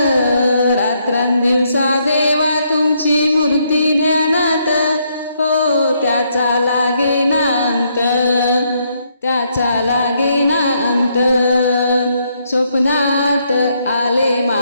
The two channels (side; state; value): both; inverted; correlation -0.74